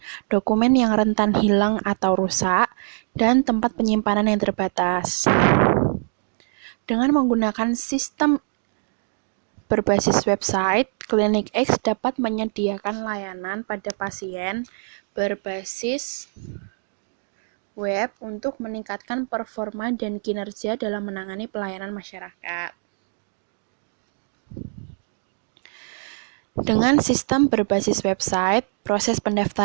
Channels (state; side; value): silent; left; 62 dB below the other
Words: dokumen yang rentan hilang atau rusak, dan tempat penyimpanan yang terbatas. Dengan menggunakan sistem berbasis website, Klinik X dapat menyediakan layanan pada pasien berbasis web untuk meningkatkan performa dan kinerja dalam menangani pelayanan masyarakat. Dengan sistem berbasis website, proses